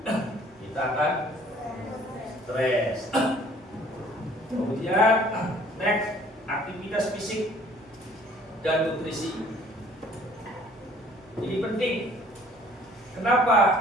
Kita akan stres. Kemudian next, aktivitas fisik dan nutrisi. Ini penting.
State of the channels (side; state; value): both; normal; correlation 0.55